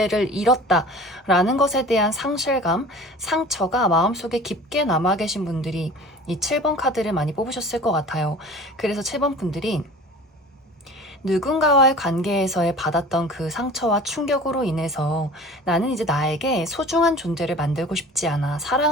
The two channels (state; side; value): normal; both; correlation 0.41